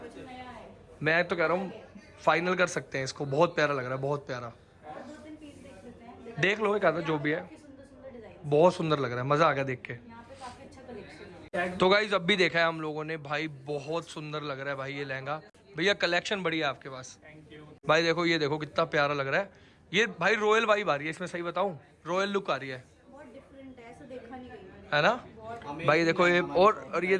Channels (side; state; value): both; identical; correlation 1.00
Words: मैं तो कह रहा हूँ फाइनल कर सकते हैं इसको, बहुत प्यारा लग रहा है, बहुत प्यारा। देख लो एक आधा जो भी है, बहुत सुंदर लग रहा है, मजा आ गया देख के। तो गाइस अब भी देखा है हम लोगों ने भाई, बहुत सुंदर लग रहा है भाई ये लहंगा। भैया कलेक्शन बढ़िया है आपके पास भाई। देखो ये देखो कितना प्यारा लग रहा है ये भाई, रॉयल वाइब आ रही है इसमें, सही बताऊं रॉयल लुक आ रही है, है ना भाई। देखो ये और ये